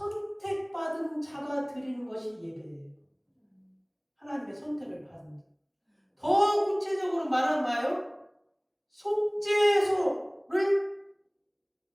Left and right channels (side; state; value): both; identical; correlation 1.00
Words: 자가 드리는 것이 예배예요. 하나님의 선택을 받은 자. 더 구체적으로 말하면 뭐예요? 속죄소를